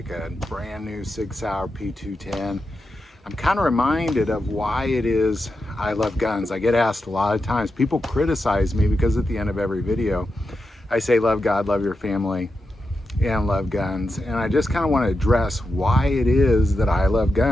a brand new Sig Sauer P210, I'm kind of reminded of why it is I love guns. I get asked a lot of times, people criticize me because at the end of every video I say love God, love your family, and love guns. And I just kind of want to address why it is that I love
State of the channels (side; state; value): both; normal; correlation 0.88